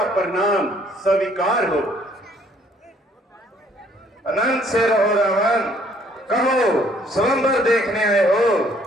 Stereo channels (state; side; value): normal; both; correlation 0.62